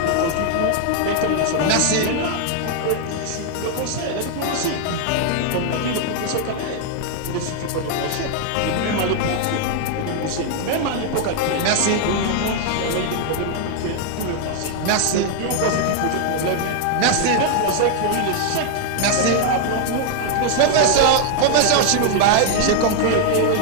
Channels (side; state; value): both; different; correlation 0.00